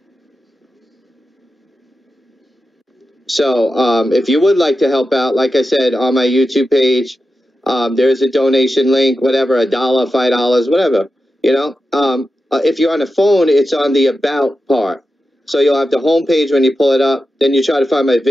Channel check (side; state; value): both; normal; correlation 0.91